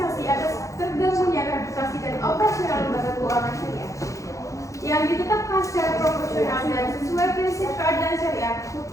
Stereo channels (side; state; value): right; late; 0.15 ms